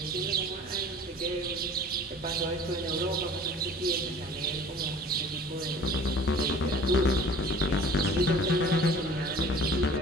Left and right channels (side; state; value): both; normal; correlation 0.46